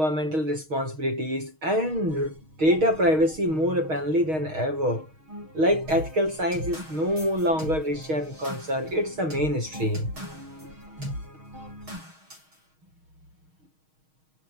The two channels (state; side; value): late; left; 6.4 ms